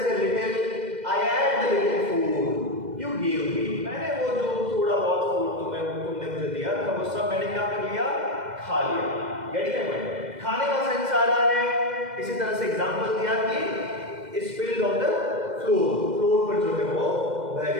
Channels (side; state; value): left; late; 2.1 ms